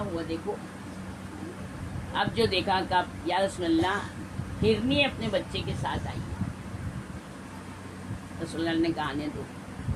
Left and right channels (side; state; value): both; identical; correlation 1.00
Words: ہوا دیکھو. اب جو دیکھا کہ یا رسول اللہ ہرنی اپنے بچے کے ساتھ آئی. رسول اللہ نے کہا آنے دو.